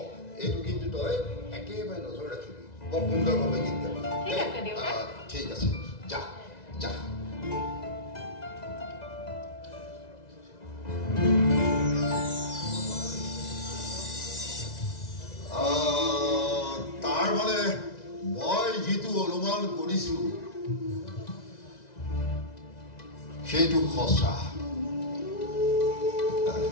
এইটো কিন্তু তই একেবাৰে নজৰ ৰাখিবি বৰ সুন্দৰভাৱে গীত গাবি ঠিক আছে যা যা তাৰ মানে মই যিটো অনুমান কৰিছোঁ সেইটো সঁচা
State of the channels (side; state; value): right; late; 2.0 ms